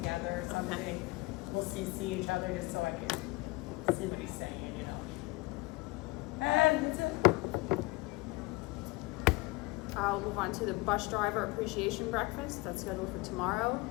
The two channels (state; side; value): quieter; right; 22.5 dB